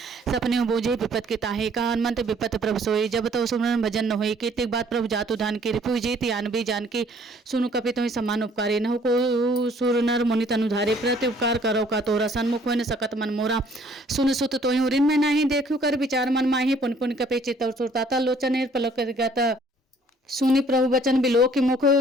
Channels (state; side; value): normal; both; correlation 0.59